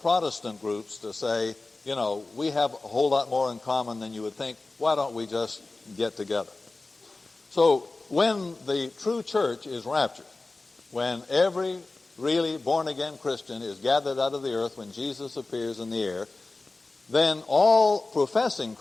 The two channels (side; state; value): right; quieter; 3.3 dB